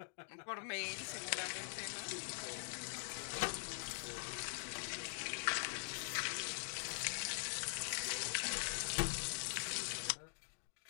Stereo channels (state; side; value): silent; right; digital silence